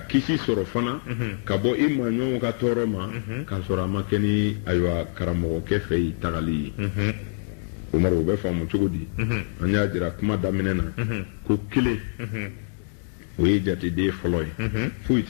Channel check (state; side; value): silent; right; digital silence